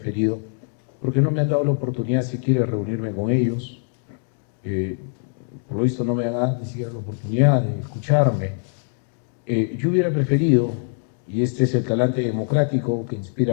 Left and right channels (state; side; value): silent; right; digital silence